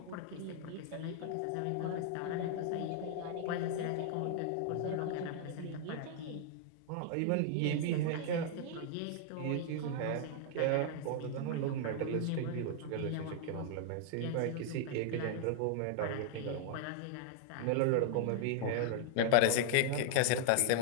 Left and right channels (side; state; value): both; different; correlation -0.01